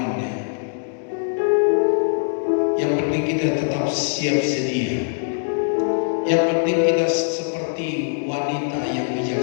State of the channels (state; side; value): silent; right; digital silence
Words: Yang penting kita tetap siap sedia. Yang penting kita seperti wanita yang